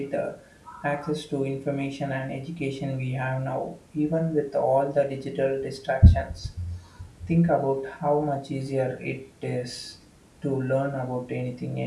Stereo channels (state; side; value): identical; both; correlation 1.00